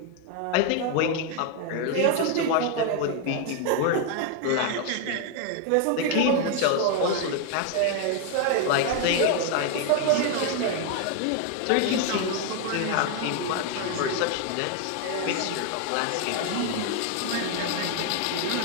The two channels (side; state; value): both; different; correlation 0.01